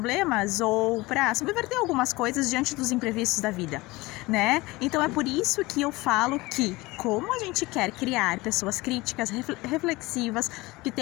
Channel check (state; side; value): quieter; right; 21.3 dB